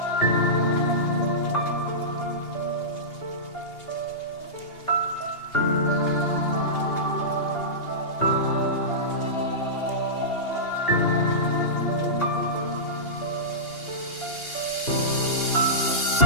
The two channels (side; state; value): right; late; 2.8 ms